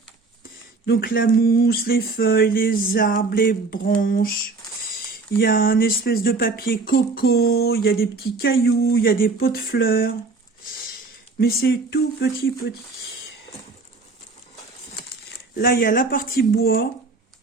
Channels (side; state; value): left; quieter; 3.9 dB